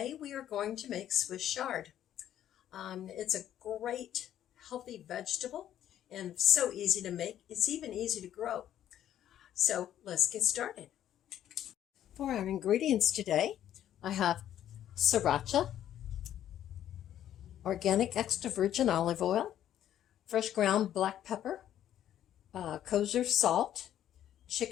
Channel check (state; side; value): quieter; right; 11.2 dB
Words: we are going to make Swiss chard. It's a great healthy vegetable and so easy to make. It's even easy to grow. So let's get started. For our ingredients today, I have sriracha, organic extra virgin olive oil, fresh ground black pepper, kosher salt,